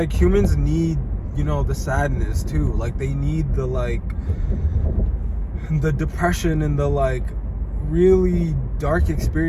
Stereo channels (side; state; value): both; identical; correlation 1.00